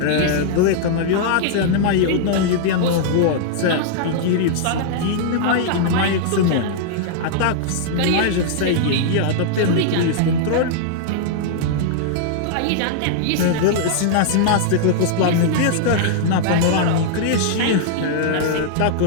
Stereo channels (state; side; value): different; both; correlation -0.01